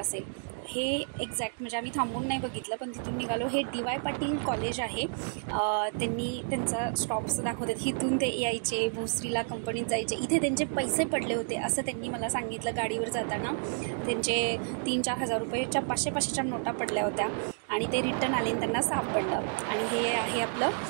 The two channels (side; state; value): left; silent; 57 dB below the other